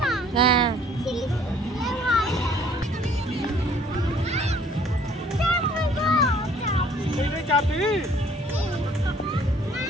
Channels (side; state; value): both; normal; correlation 0.57